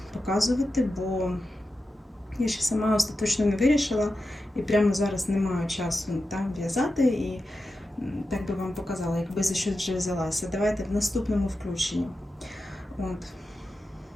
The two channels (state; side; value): normal; both; correlation 0.91